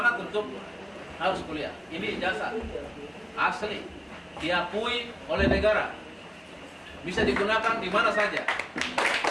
untuk harus kuliah. Ini ijazah asli, diakui oleh negara, bisa digunakan di mana saja.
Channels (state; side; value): identical; both; correlation 1.00